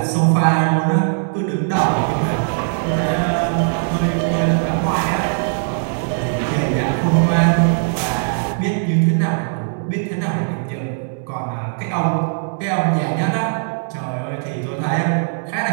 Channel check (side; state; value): left; silent; digital silence